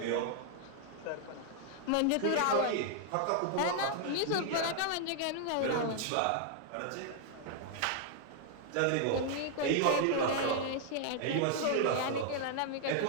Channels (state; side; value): different; both; correlation 0.00